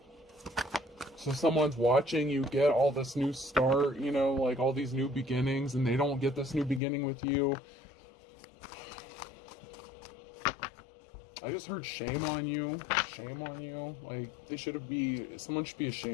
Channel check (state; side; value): drops out; right; at 6.8 s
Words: So someone's watching you get all this new start, you know, like all these new beginnings, and they don't get this new beginning with you. I just heard shame on you. Shame on you. Like, someone should be